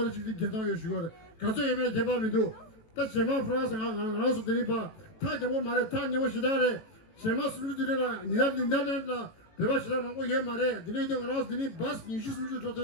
찍찍 개도 이 슈거를 가서 예매 개발미도 다 제마 프랑스 나라서 드리바 다 제모 말에 다 녀고 시다래 제마 수주들이라 니달라 배바 시다 먹고 얘 말에 니네도 나라서 드니 바스 니슈 수주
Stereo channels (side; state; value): right; late; 18 ms